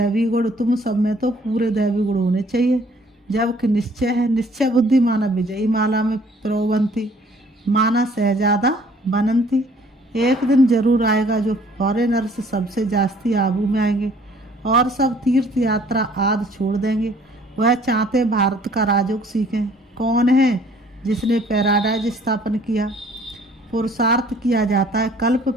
गुण होने चाहिए। जबकि निश्चय है, निश्चय बुद्धि माना विजयी माला में प्रोबंती, माना शहजादा बनंती। एक दिन जरूर आएगा जो फॉरेनर्स सबसे जास्ती आबू में आएंगे और सब तीर्थ यात्रा आदि छोड़ देंगे। वह चाहते भारत का राजयोग सीखें। कौन है जिसने पैराडाइज स्थापन किया? पुरुषार्थ किया जाता है, कल्प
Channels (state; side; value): normal; both; correlation 0.57